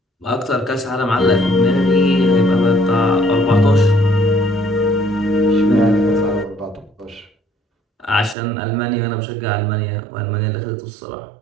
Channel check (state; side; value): drops out; left; at 8.3 s